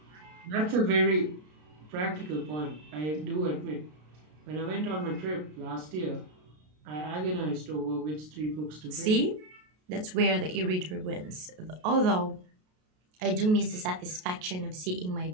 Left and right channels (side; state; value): left; late; 33 ms